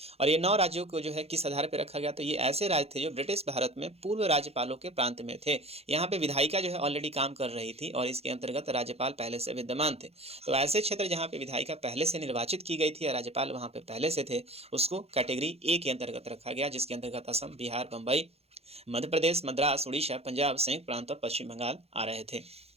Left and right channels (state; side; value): late; left; 0.29 ms